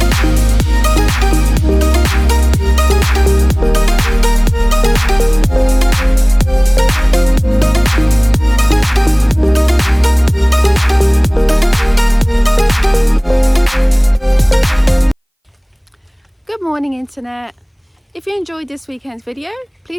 Good morning internet. If you enjoyed this weekend's video,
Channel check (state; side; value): identical; both; correlation 1.00